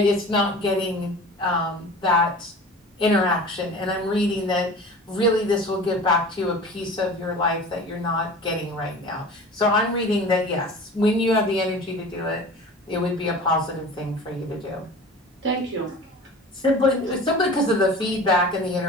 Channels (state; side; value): normal; both; correlation 0.39